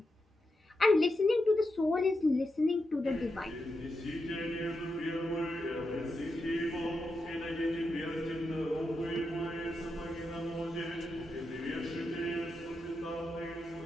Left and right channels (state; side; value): normal; both; correlation 0.87